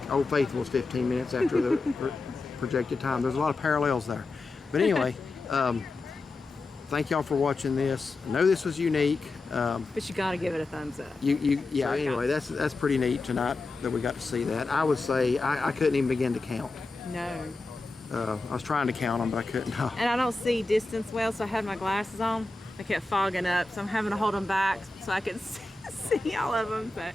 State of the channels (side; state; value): right; quieter; 3.4 dB